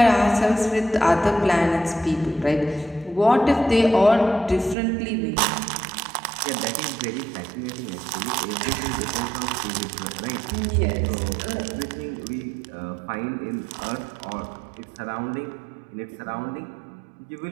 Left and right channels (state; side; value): drops out; left; at 4.8 s